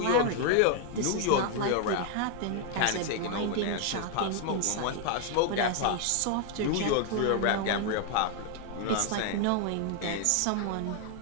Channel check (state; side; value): different; both; correlation 0.00